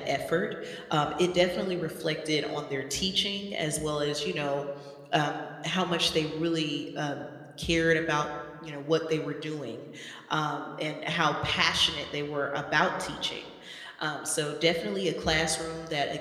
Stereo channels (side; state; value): both; identical; correlation 1.00